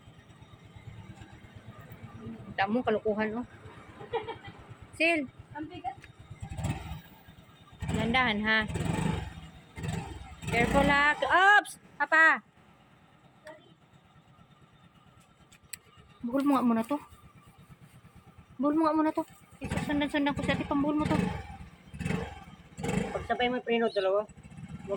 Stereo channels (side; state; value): both; identical; correlation 1.00